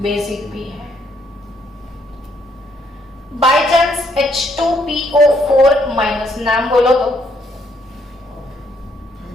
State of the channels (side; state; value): both; normal; correlation 0.71